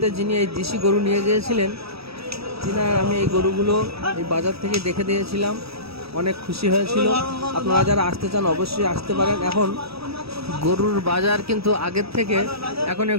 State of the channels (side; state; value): left; late; 0.77 ms